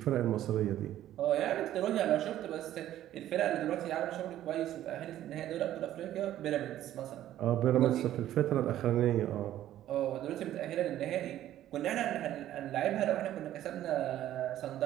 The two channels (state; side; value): quieter; left; 12.7 dB